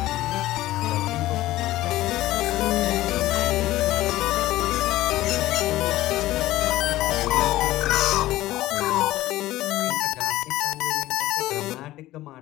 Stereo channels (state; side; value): quieter; right; 16.1 dB